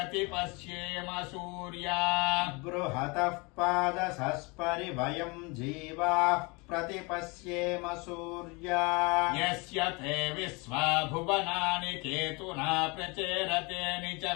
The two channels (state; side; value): quieter; right; 28.1 dB